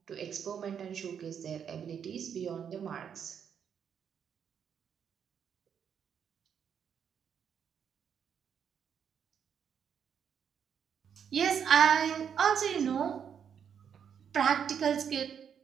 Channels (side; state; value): left; quieter; 7.9 dB